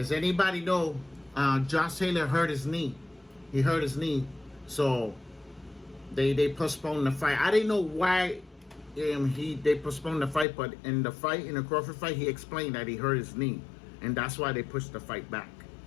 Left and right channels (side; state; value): right; drops out; at 10.5 s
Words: anybody know Josh Taylor hurt his knee? He hurt his knee. So they postponed the fight. I didn't know why they postponed the fight, but in the Crawford fight, he explained that he hurt his knee, and that's why they pushed the fight back. You know